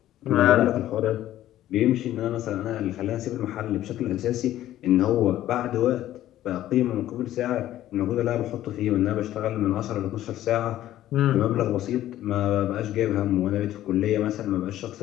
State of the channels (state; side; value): quieter; right; 13.3 dB